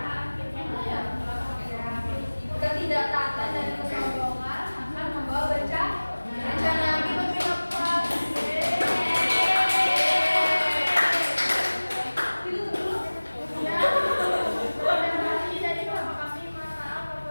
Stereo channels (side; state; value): both; inverted; correlation -1.00